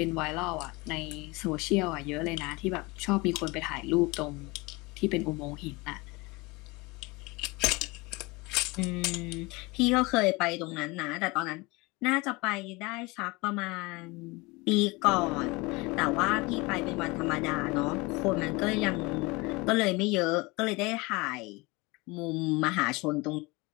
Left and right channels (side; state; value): right; quieter; 24.7 dB